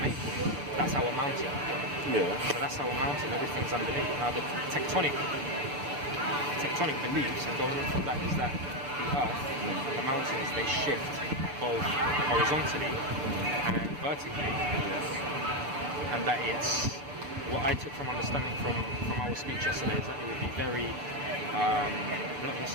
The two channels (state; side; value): late; left; 6.8 ms